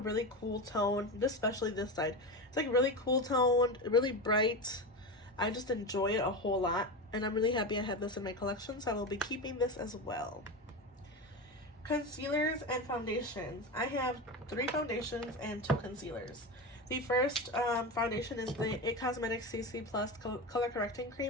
cool tone, especially this side. It's like really cool toned, really bright. I just enjoy it a whole lot, and I'm really happy I have this in my collection, so I will be keeping this as well. Concealers and foundations. I have 3 foundations and 2 concealers. The first foundation is the It Cosmetics CC Plus Color Correcting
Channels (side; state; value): both; normal; correlation 0.21